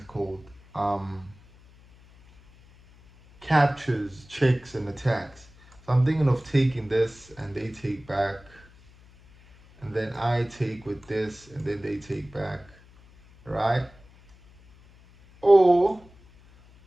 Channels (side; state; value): left; noise; hum, 26 dB below the sound